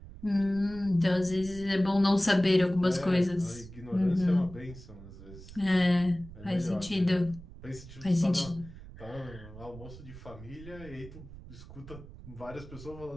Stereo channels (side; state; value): right; noise; rumble, 16 dB below the sound